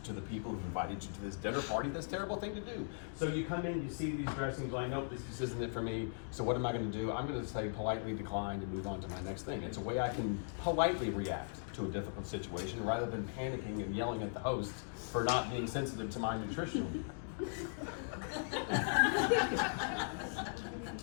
to the people who invited you to this dinner party. That's a terrible thing to do. So you come in, you see these dressings, like, nope, this isn't it for me. So what am I going to do? I'm going to say politely decline and move on to my next thing. It's a way I can politely react to a difficult situation rather than panicking and yelling at the host for not being sensitive to my nutrition.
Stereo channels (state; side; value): silent; right; digital silence